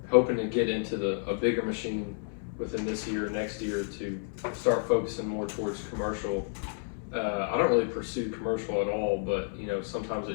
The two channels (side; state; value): right; silent; 57 dB below the other